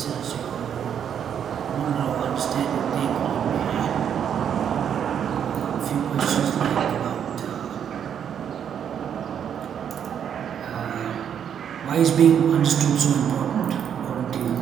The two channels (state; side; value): quieter; left; 8.6 dB